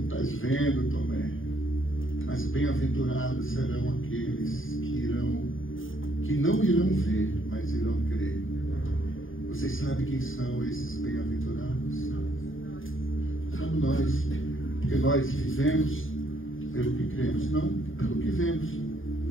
estás vendo, Tomé. Mas bem-aventurados serão aqueles que não irão ver, mas irão crer. Vocês sabem quem são esses bem-aventurados? Somos nós, porque nós vivemos pelo que cremos, não pelo que vemos.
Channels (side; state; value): right; late; 0.58 ms